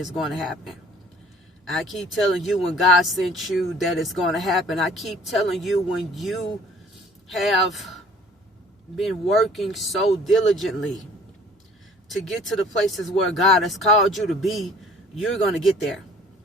going to happen. I keep telling you, when God sent you, that it's going to happen. I keep telling you, when you have been working so diligently to get to the places where God has called you to be, you're going to get there.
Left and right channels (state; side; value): normal; both; correlation 0.52